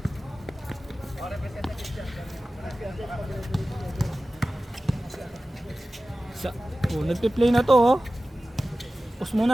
Nagpi-play na to oh. Pause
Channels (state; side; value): normal; both; correlation 0.95